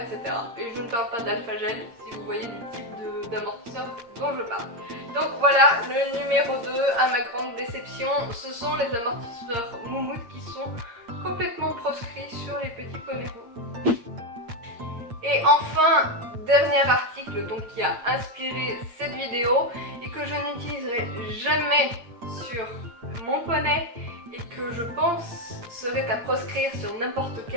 Et je ne parle pas d'alpha gel si vous voyez du type d'amortisseur dont je parle. Donc voilà, le numéro 2, à ma grande déception, ce sont les amortisseurs moumoute qui sont complètement proscrits sur les petits poneys roux. Et enfin, dernier article donc, qui a inspiré cette vidéo et que je n'utiliserai jamais sur mon poney et que je pense serait à proscrire sur n'importe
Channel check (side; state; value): left; late; 8.6 ms